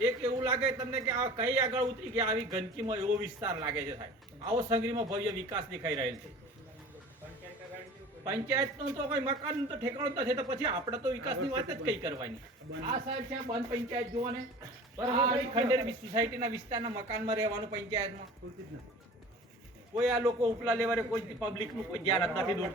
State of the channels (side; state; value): both; normal; correlation 0.42